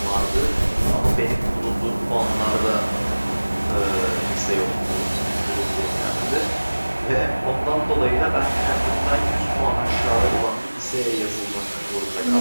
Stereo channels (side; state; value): both; inverted; correlation -1.00